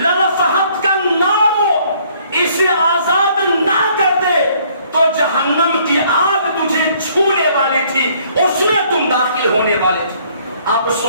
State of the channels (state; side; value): inverted; both; correlation -0.62